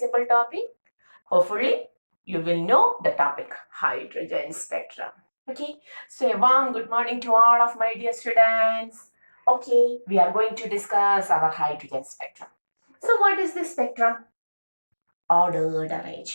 topic. Hopefully, you will know the topic, hydrogen spectrum. Okay, so a warm good morning to all of my dear students. Okay, we are going to discuss our hydrogen spectrum. So what is this spectrum? Ordered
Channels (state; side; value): inverted; both; correlation -1.00